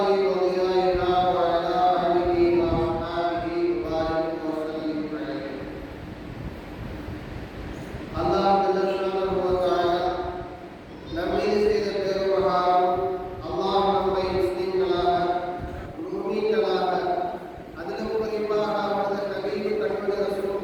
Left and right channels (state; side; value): identical; both; correlation 1.00